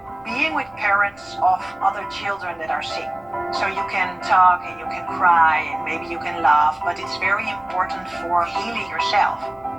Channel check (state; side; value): noise; left; rumble, 29 dB below the sound